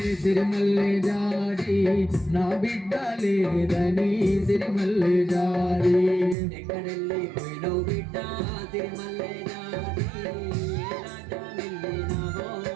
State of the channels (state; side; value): drops out; left; at 6.4 s